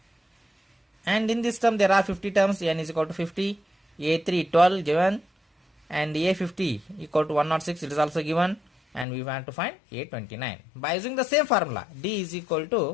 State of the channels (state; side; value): drops out; right; at 9.1 s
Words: And in this term there are 50 terms, n is equal to 50, A3 12 given, and A50 equal to 106, it is also given, and we want to find A29. By using the same formula, D is equal